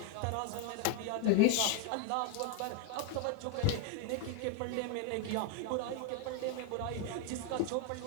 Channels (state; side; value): different; both; correlation 0.01